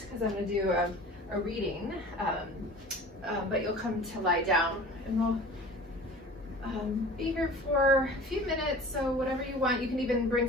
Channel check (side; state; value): both; normal; correlation 0.41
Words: because I'm going to do a reading, but you'll come to lie down, and we'll be here for a few minutes. So whatever you want, you can even